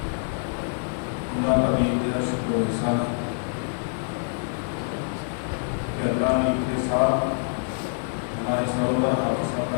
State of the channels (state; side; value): silent; right; 57 dB below the other